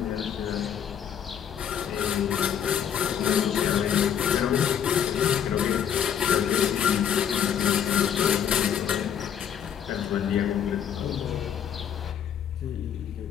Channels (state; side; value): quieter; right; 8.8 dB